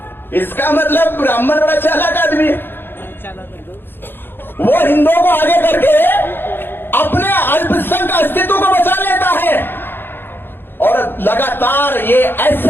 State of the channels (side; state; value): right; late; 0.10 ms